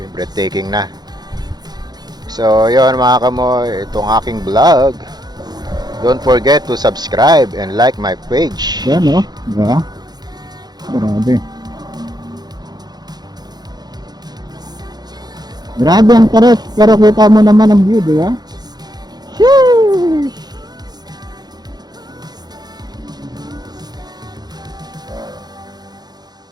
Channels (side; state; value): left; late; 0.20 ms